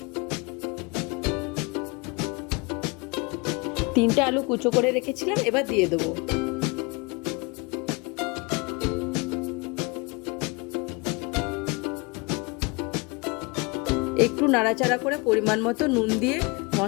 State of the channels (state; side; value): quieter; right; 28.3 dB